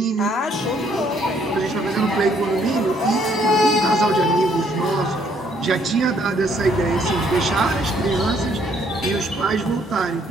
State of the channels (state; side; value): normal; both; correlation 0.66